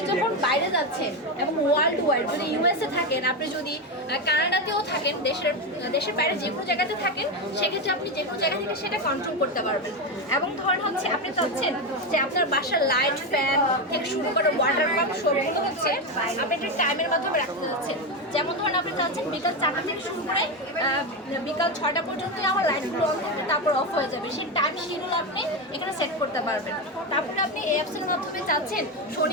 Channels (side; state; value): both; normal; correlation 0.12